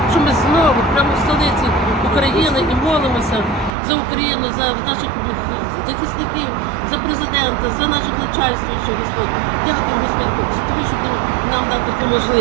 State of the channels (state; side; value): drops out; left; at 3.7 s